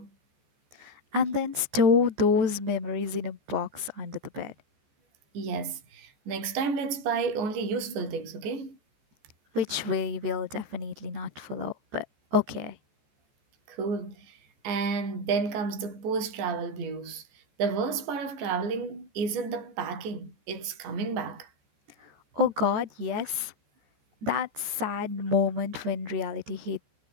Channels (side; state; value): left; late; 14 ms